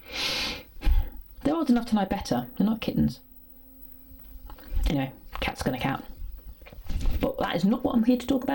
They're old enough to know better, they're not kittens. Anyway, cat's gonna cat. But that is not what I'm here to talk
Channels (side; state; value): both; identical; correlation 1.00